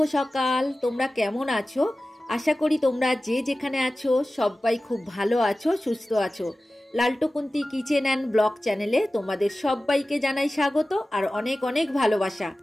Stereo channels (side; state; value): both; normal; correlation 0.96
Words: সকাল। তোমরা কেমন আছো? আশা করি তোমরা যে যেখানে আছো সবাই খুব ভালো আছো, সুস্থ আছো। লালটুকুন্তি কিচেন অ্যান্ড ব্লগ চ্যানেলে তোমাদের সবাইকে জানাই স্বাগত আর অনেক অনেক ভালোবাসা।